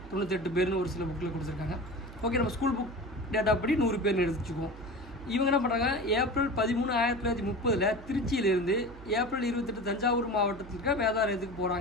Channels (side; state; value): right; noise; hum, 17 dB below the sound